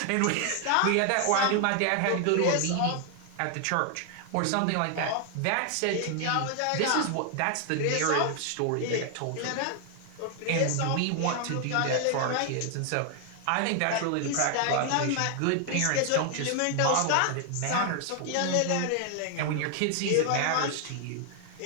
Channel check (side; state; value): both; different; correlation 0.00